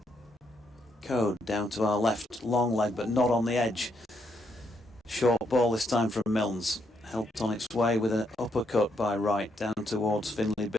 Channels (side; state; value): both; normal; correlation 0.76